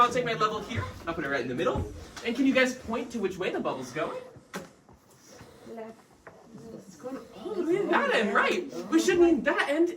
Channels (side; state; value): both; identical; correlation 1.00